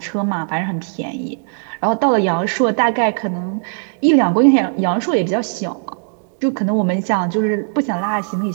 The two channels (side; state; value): left; silent; 67 dB below the other